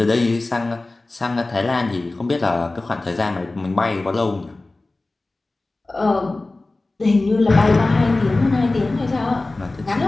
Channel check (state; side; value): quieter; right; 3.1 dB